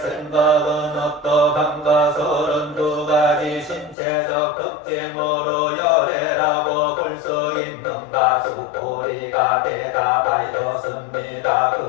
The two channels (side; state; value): right; drops out; at 4.0 s